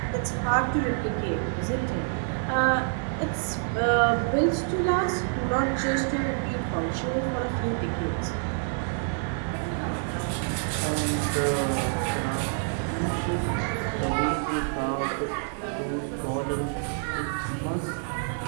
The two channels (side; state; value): left; silent; digital silence